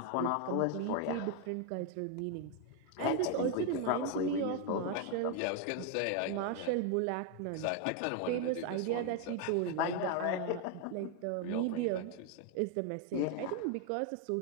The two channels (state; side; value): different; both; correlation 0.01